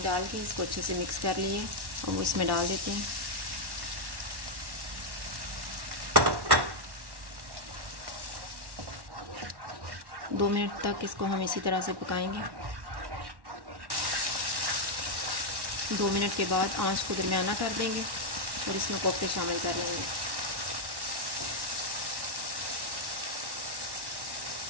डाल के इसको अच्छे से मिक्स कर लिए और इसमें डाल देते हैं। दो मिनट तक इसको हम इसी तरह से पकाएंगे। 2 मिनट के बाद आंच को दरमियाना कर देंगे और इसमें कोफ्ते शामिल कर लेंगे।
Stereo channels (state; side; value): late; left; 1.1 ms